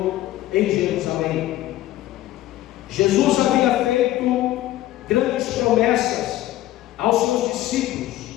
em Jerusalém. Jesus havia feito grandes promessas aos seus discípulos,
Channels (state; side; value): quieter; right; 15.0 dB